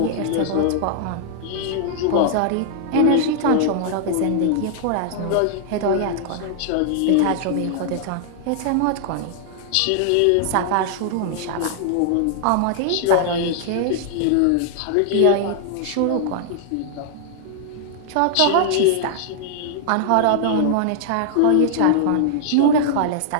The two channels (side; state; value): both; different; correlation -0.01